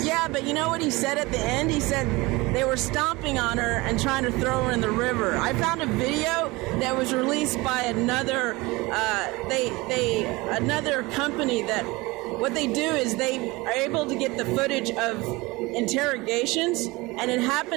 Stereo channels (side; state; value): left; quieter; 22.7 dB